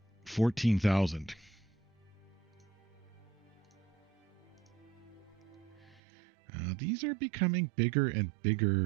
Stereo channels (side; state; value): left; drops out; at 6.0 s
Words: 14,000. These are becoming bigger and